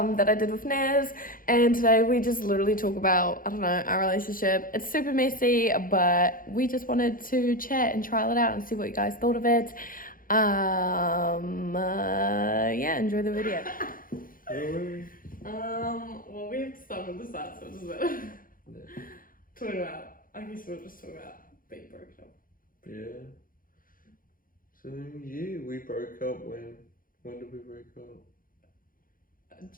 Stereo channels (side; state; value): right; late; 0.41 ms